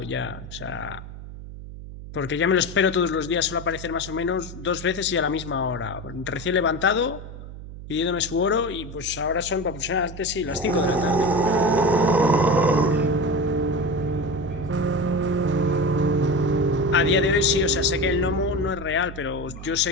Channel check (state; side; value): noise; right; hum, 13 dB below the sound